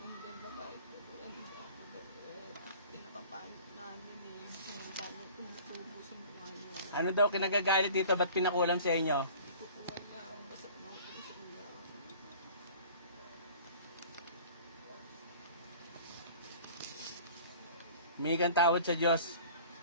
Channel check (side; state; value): both; inverted; correlation -0.45